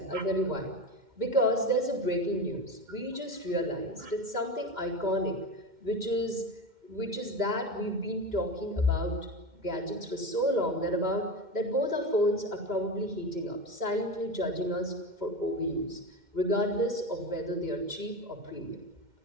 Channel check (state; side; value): late; left; 2.1 ms